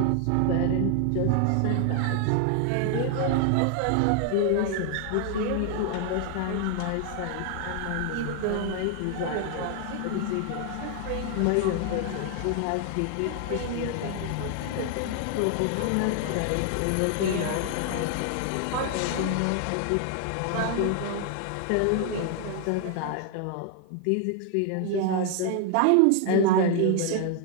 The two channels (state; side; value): different; both; correlation 0.00